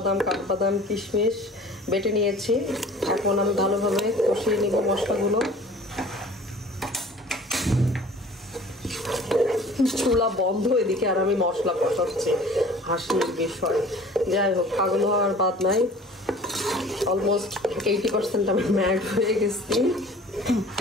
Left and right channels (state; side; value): normal; both; correlation 0.46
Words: কাঠবাদাম, কিশমিশ বেটে নিয়েছি। এখন আমি ভালোভাবে কষিয়ে নিব মশলাগুলো। চুলা বন্ধ এদিকে আর আমি মশলা কষাচ্ছি, হাসির বিষয়। যাই হোক, পাগল হওয়ার বাদ নাই। অলমোস্ট 80% আমি ম্যাড হয়ে গেছি।